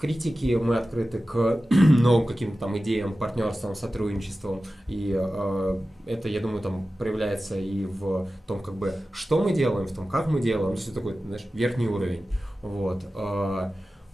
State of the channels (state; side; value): normal; both; correlation 0.95